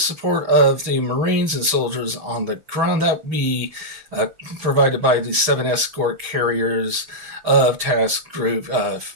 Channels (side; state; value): left; late; 6.3 ms